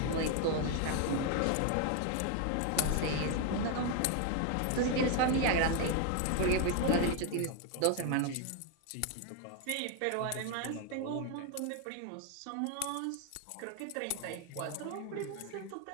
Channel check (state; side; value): different; both; correlation 0.01